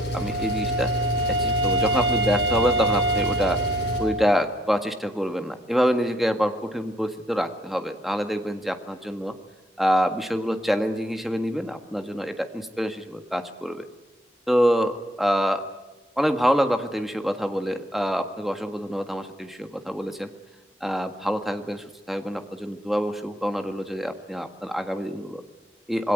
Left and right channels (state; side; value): normal; both; correlation 0.68